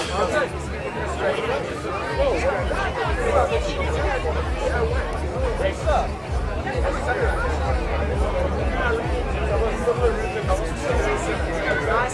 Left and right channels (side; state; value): both; identical; correlation 1.00